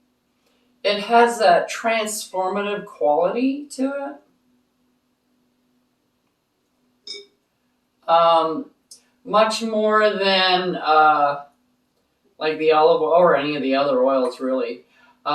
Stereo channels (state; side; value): identical; both; correlation 1.00